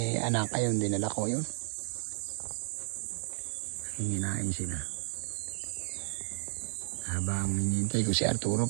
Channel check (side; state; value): left; silent; 56 dB below the other